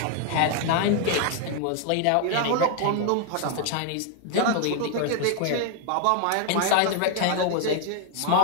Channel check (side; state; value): both; different; correlation 0.00